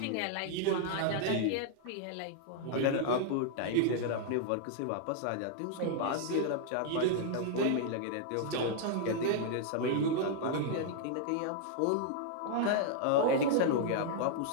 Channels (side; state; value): both; different; correlation -0.01